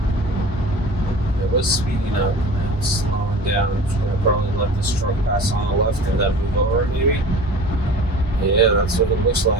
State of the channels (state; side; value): normal; both; correlation 0.40